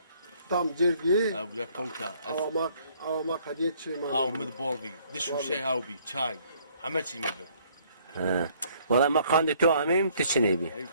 Tam cergi. Abu ya konka. Avamak hadiye çiğma. Av mid bolvi. Dişu şey av bi. Çay. Hameçi mi be? Ha. Valla ma kandı tu amim tiçini bi. Ey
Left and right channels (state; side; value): inverted; both; correlation -0.63